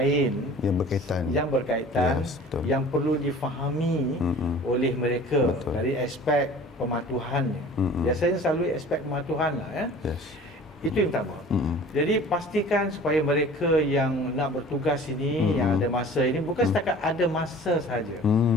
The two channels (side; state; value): both; normal; correlation 0.45